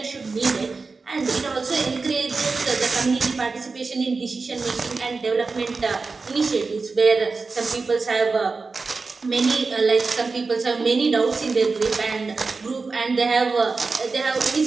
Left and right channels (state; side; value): quieter; left; 4.2 dB